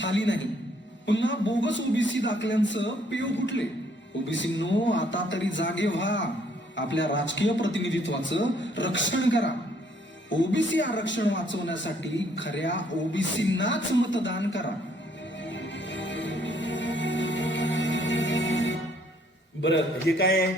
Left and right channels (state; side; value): normal; both; correlation 0.65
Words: नाही. पुन्हा बोगस ओबीसी दाखल्यांचं पेव फुटले. ओबीसींनो, आता तरी जागे व्हा, आपल्या राजकीय प्रतिनिधित्वाचं रक्षण करा. ओबीसी आरक्षण वाचवण्यासाठी खऱ्या ओबीसींनाच मतदान करा. बरं, हे काय आहे?